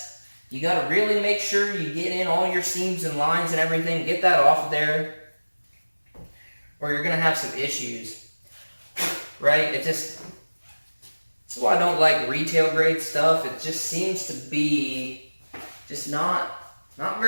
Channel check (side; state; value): both; inverted; correlation -1.00